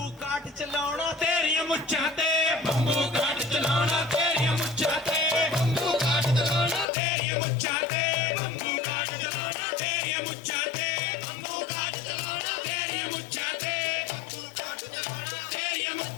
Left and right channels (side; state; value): right; drops out; at 6.9 s